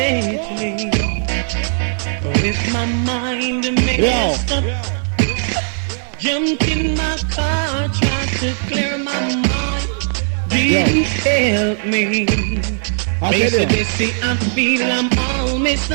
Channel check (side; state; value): left; silent; 57 dB below the other